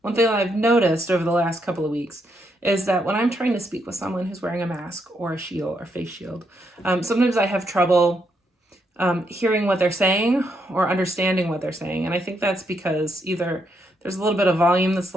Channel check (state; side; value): normal; both; correlation 0.77